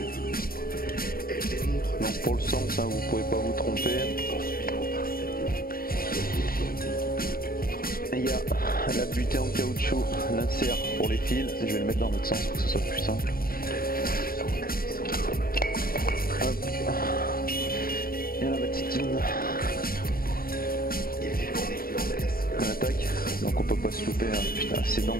Donc pour le sens, vous pouvez pas vous tromper. Et il y a la butée en caoutchouc, l'insert pour les fils. Je vais le mettre dans l'autre sens pour que ce soit plus simple. Hop. Et la batitine. On attaque. Donc on peut pas se louper. Hein. Putain, c'est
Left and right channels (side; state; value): right; late; 0.43 ms